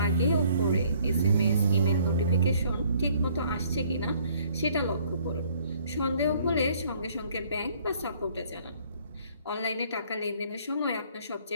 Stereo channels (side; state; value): both; inverted; correlation -0.61